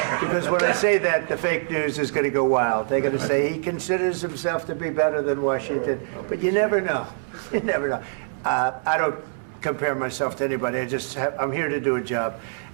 when I say that, the fake news is going to go wild. They're going to say he considers himself to be better than Washington. But you never know. You never know. I don't compare myself to anybody. I'm here to do a job.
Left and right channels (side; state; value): left; silent; 62 dB below the other